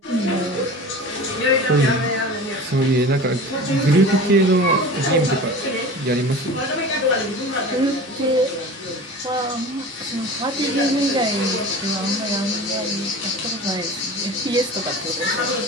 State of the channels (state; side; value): normal; both; correlation 0.36